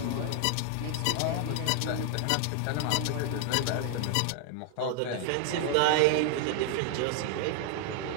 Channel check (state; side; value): different; both; correlation 0.00